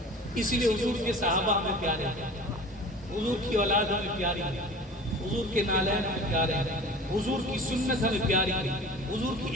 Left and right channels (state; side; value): normal; both; correlation 0.40